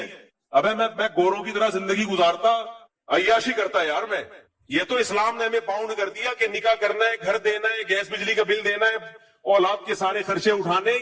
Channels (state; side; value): identical; both; correlation 1.00